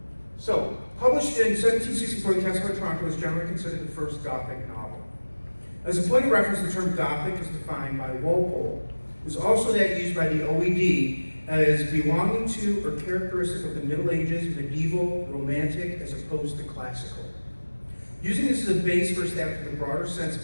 Published in 1764, The Castle of Otranto is generally considered the first Gothic novel. As a point of reference, the term Gothic is defined by Walpole. It is also that used by the OED as belonging to or characteristic of the Middle Ages, medieval, romantic, as opposed to classical. Using this as a base for establishing the broader sense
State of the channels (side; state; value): both; inverted; correlation -1.00